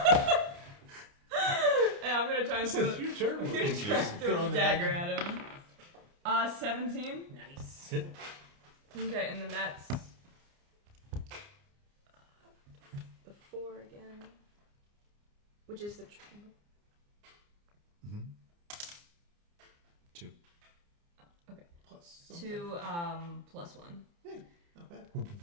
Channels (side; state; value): left; late; 29 ms